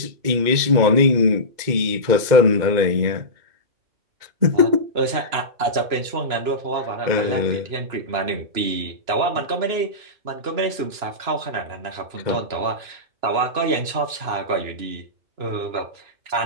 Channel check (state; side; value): late; left; 2.9 ms